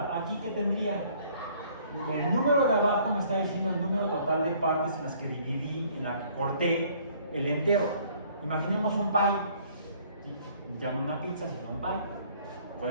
Aquí, ¿qué tendría? El número de abajo me está diciendo el número total de partes en las que dividí, en la que corté el entero. Imaginemos un pie. Ya no una pizza, sino un pie.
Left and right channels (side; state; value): both; inverted; correlation -0.59